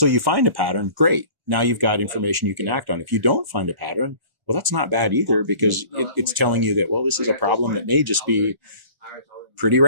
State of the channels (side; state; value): left; late; 1.0 ms